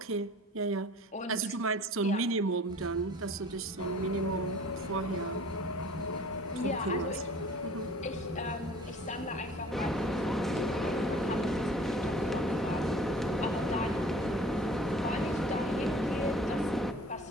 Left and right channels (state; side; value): normal; both; correlation 0.47